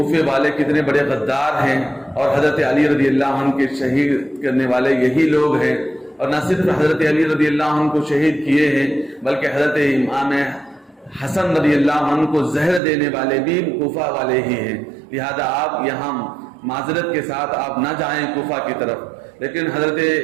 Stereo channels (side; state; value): left; drops out; at 12.8 s